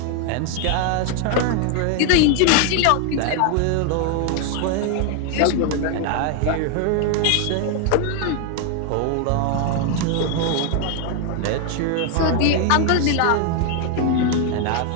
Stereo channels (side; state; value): both; different; correlation 0.01